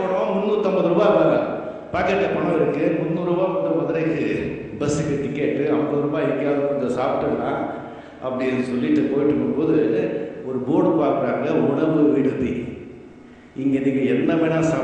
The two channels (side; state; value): both; identical; correlation 1.00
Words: 350 ரூபா பாக்கெட்டில் பணம் இருக்குது, 300 ரூபா வந்து மதுரைக்கு பஸ்ஸுக்கு டிக்கெட்டு, 50 ரூபாய் எங்கேயாவது கொஞ்சம் சாப்பிட்டுடலாம் அப்படின்னு சொல்லிட்டு போயிட்டு இருக்கும்போது ஒரு போர்டு பார்க்குறாங்க, உணவு விடுதி. இங்கே நீங்கள் என்ன வேணால்